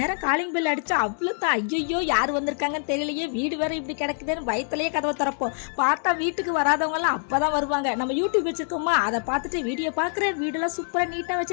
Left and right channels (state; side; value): silent; right; 58 dB below the other